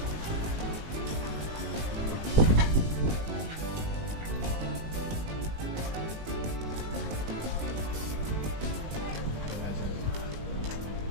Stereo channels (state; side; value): late; left; 19 ms